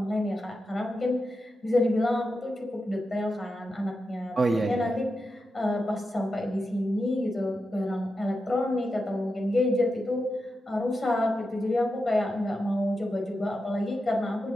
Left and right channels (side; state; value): both; normal; correlation 0.89